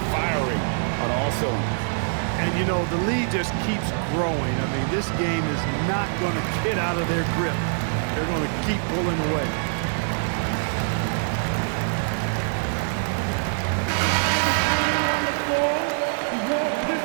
firing on all cylinders. And, you know, the lead just keeps growing. I mean, this game is not going to get out of their grip. They're going to keep pulling away.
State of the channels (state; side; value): silent; left; digital silence